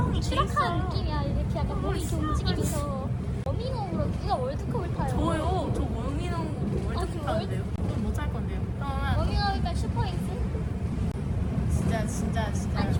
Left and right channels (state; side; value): identical; both; correlation 1.00